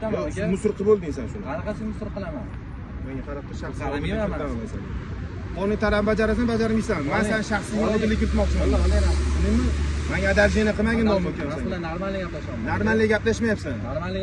Yo'q, aka. musor qilib bo'lding sen shuni. Qanaqasi musor qilaman? Menga qarab tur, shaxsiy Qaramayman men. Qonun talabini bajarasan, bajarmaysan. Men sen shaxsiy odillik kiritmoqchiman. Tushundingmi? Menga adajini qilmagin dom Mas ekansan. bilan normalniy gaplashaman. Normalniy gaplashmayapsan.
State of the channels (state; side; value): identical; both; correlation 1.00